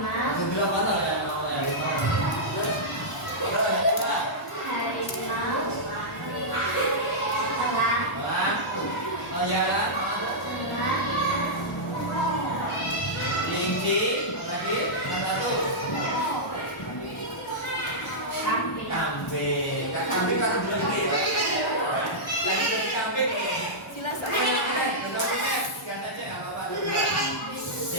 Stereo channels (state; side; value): normal; both; correlation -0.11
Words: Sebelah mana ya mau harimau? Berapa yang kedua? Harimau. Elang. Elang. Oh ya kan? Elang. Kelinci. Lagi yang satu. Kambing. Kambing. Kambing kan belum gede. Lagi jadi kambing. Jelas Ikan aja nggak apa-apa.